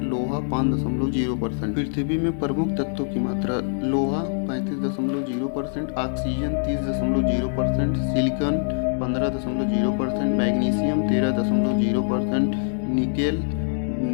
लोहा 5.0%। पृथ्वी में प्रमुख तत्वों की मात्रा: लोहा 35.0%, ऑक्सीजन 30.0%, सिलिकॉन 15.0%, मैग्नीशियम 13.0%, निकेल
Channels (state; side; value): silent; right; digital silence